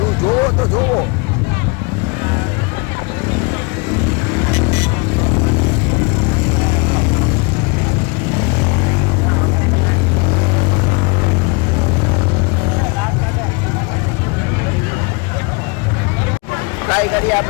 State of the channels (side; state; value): right; quieter; 30.0 dB